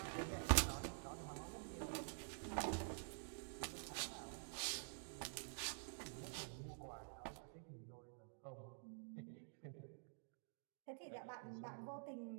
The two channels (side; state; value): left; silent; digital silence